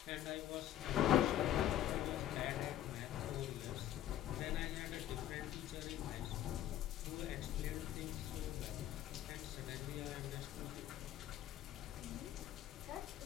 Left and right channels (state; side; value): quieter; right; 12.1 dB